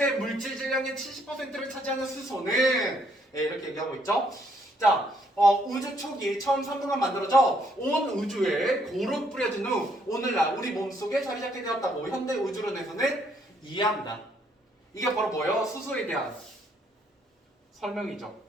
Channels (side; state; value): both; normal; correlation 0.69